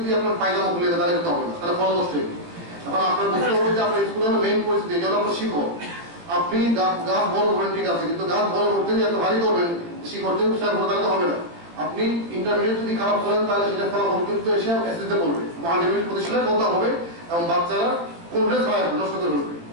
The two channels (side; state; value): left; late; 18 ms